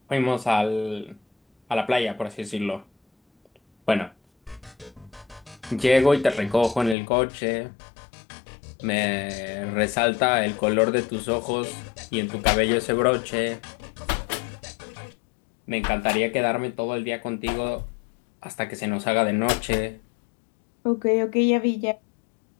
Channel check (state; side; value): drops out; right; at 7.0 s